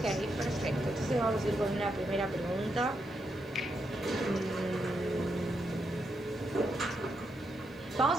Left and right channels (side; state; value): both; normal; correlation 0.81